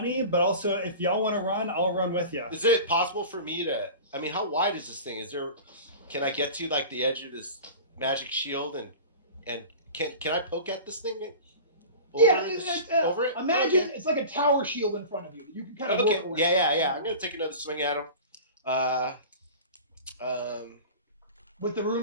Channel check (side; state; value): both; inverted; correlation -0.35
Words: but also if y'all want to run, I'll run with you. Is it possible for me to, I mean, how wide is this thing? Can I get to like the edge of this magic shield and can I poke at this thing? Over it? Imagine Okay. it's like a tower shield in front of you. You can kind of Okay. work away. Yeah. I'm gonna take another swing at him. With the rune